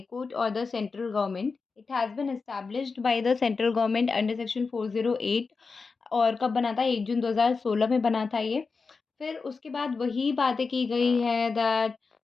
Court or the central government. It has been established by the central government under section 408 और कब बना था? 1 जून 2016 में बना था ये। फिर उसके बाद वही बातें की गई है दैट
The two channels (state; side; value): quieter; right; 4.6 dB